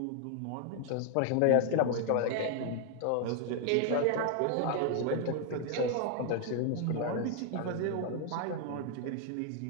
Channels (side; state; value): both; different; correlation 0.01